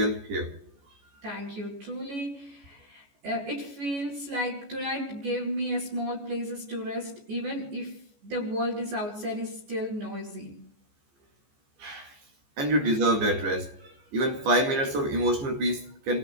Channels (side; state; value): left; late; 14 ms